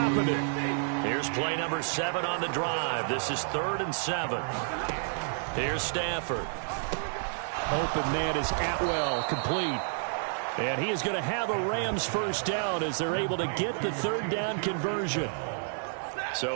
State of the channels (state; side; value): silent; left; digital silence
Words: it. Here's play number 7 on the drive. This is 3rd and 7. Here's Stafford. Open man is Atwell, complete. And he is going to have a Rams first down as they're able to get the 3rd down conversion.